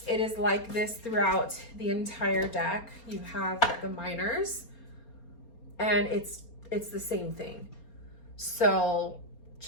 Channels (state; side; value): late; right; 4.3 ms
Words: it is like this throughout the entire deck. You have the minors, and it's the same thing. So